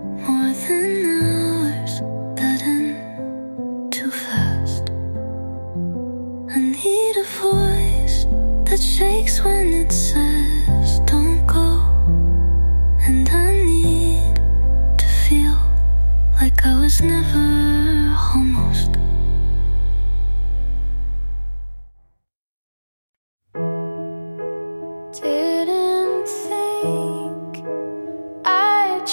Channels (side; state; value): both; inverted; correlation -1.00